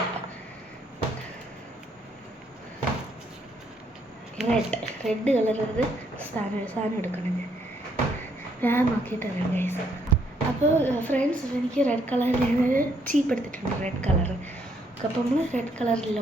റെഡ് കളറത് സാധനം എടുക്കണം. ഞാൻ നോക്കിയിട്ട് അറിയാം ഗൈസ്. അപ്പോൾ ഫ്രണ്ട്സ്, എനിക്ക് റെഡ് കളറിൽ ഞാനൊരു ചീപ്പ് എടുത്തിട്ടുണ്ട്, റെഡ് കളർ. അപ്പോൾ നമ്മൾ റെഡ്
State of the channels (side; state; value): both; normal; correlation 0.71